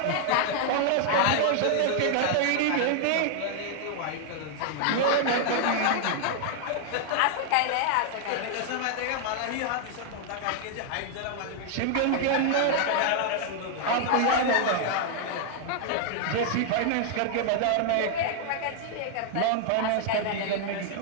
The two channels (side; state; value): both; different; correlation 0.00